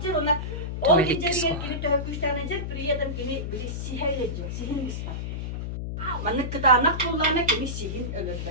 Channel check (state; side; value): noise; left; hum, 4 dB below the sound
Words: ona. O geceliğe gelip de höküşten edecek, bir adam biri siher edecek, sihin ispat. Manık kıtağına kulağına kimi sihin